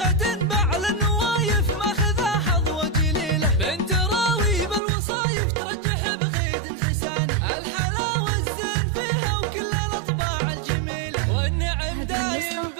بعل النوايف ماخذها حظوة جليلة، بنت راوي بالوصايف ترجح بغيد حساني، الحلاوة الزين فيها وكل الأطباع الجميلة، والنعم دايم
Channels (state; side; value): drops out; left; at 4.8 s